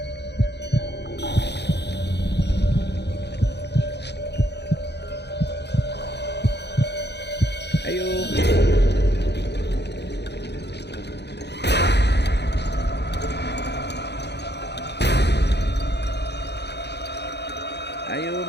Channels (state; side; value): late; right; 0.49 ms